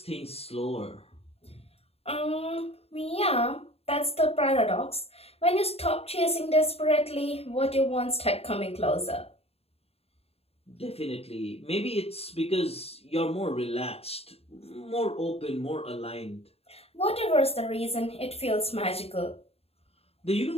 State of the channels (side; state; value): right; late; 0.29 ms